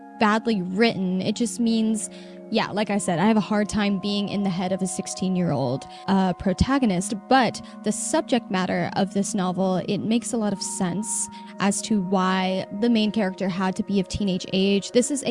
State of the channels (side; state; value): both; identical; correlation 1.00